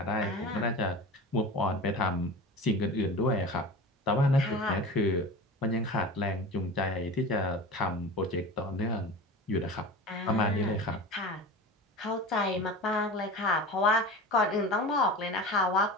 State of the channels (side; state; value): both; normal; correlation 0.32